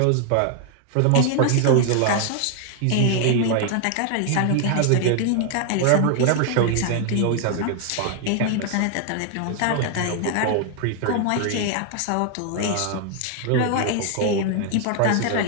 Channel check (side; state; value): both; different; correlation 0.00